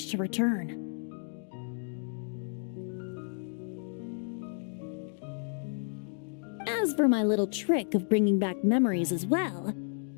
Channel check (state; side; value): silent; right; 57 dB below the other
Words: to return. As for my little trick of bringing back memories as well,